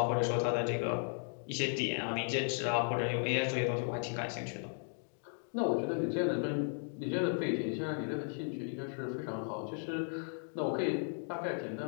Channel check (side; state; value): right; silent; 54 dB below the other